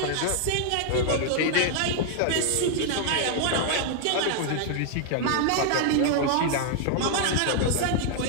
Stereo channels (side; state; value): both; different; correlation 0.00